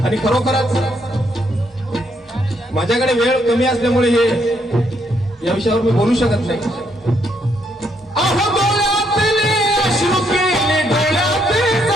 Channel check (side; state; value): both; normal; correlation 0.73